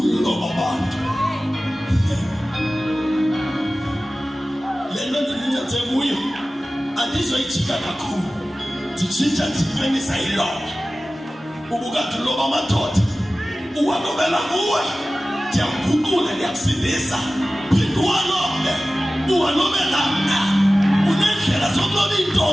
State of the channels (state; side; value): normal; both; correlation 0.96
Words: abantu. Lento ndinithathe kuyo andizoyijika kakhulu. Nditshintsha ndiphenisa iloba. Ubukade uloba amadoda uwalobela kuwe. Ndiyamguqula ndiyakusindisa. Phinda uwalobe uwalobela mna. Unendlela zokuloba